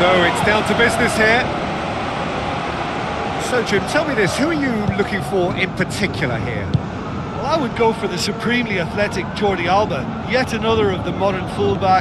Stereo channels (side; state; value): both; identical; correlation 1.00